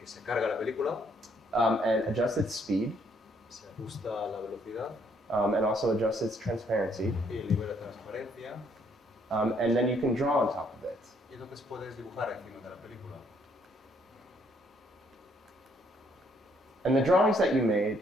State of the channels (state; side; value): normal; both; correlation 0.68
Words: se carga la película, and adjust its speed se ajusta la velocidad and also adjust its transparency. y libera transparencia. And then you can draw on top of it. Y entonces puedes dibujar encima de la película. And the drawings that you made